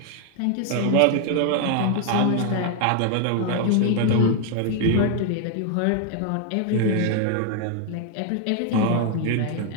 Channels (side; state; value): both; different; correlation 0.00